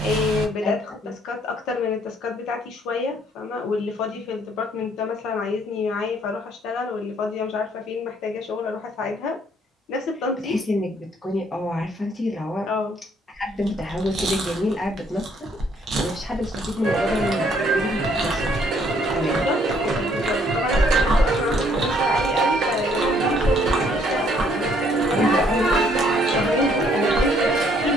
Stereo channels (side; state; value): both; normal; correlation 0.65